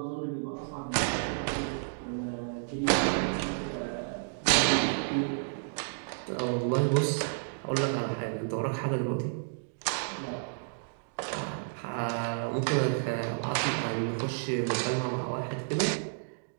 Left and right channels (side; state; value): left; silent; digital silence